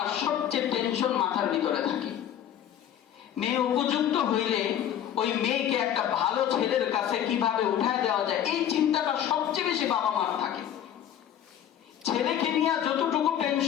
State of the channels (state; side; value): quieter; right; 10.4 dB